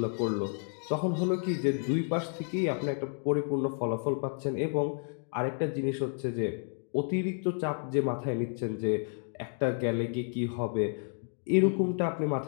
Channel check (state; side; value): silent; right; 57 dB below the other